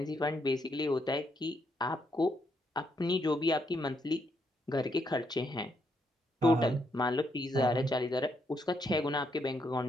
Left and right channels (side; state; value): both; normal; correlation 0.76